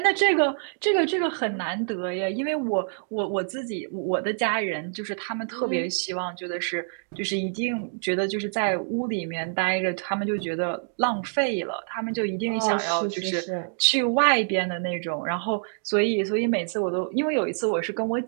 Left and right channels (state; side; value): silent; left; digital silence